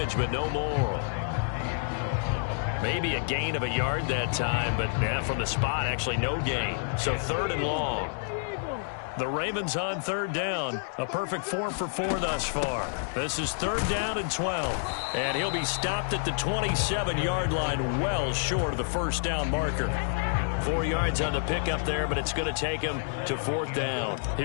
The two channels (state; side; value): silent; right; digital silence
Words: but no more. Maybe a gain of a yard that time, but from the spot, actually no gain. So 3rd and long. The Ravens on 3rd down. A perfect 4 for 4 thus far. This is 3rd down and 12. And he'll be stopped at the 27-yard line, well short of the 1st down marker. 4 yards on the pickup there, but it's going to take him to 4th down.